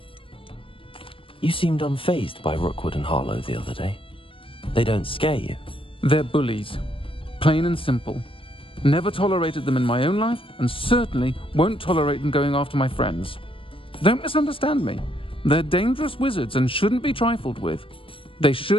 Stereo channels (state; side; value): late; right; 0.26 ms